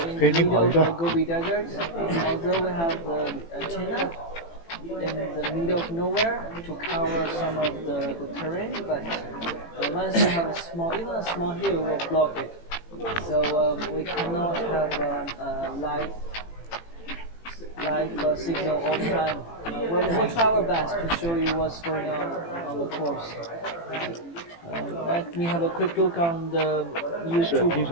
in the middle of the Gobi Desert, although we have the antenna in the middle of nowhere to cover some of the terrain, but once you have even a small hill will block it. So we cannot have live signal all the time. We'll try our best to show you what's going on the course. Let me have a quick look on the YouTube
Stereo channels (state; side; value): late; right; 18 ms